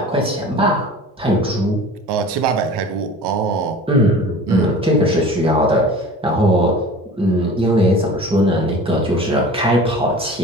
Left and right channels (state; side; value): normal; both; correlation 0.40